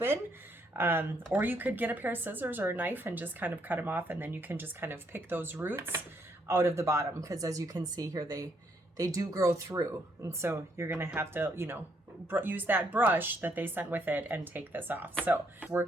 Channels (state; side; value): normal; both; correlation 0.72